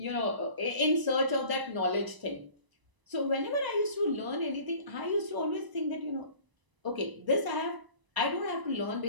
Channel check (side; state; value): left; late; 1.0 ms